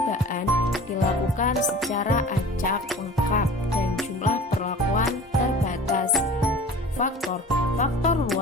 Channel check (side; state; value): both; normal; correlation 0.41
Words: dilakukan secara acak lengkap dan jumlah perlakuan terbatas. Faktor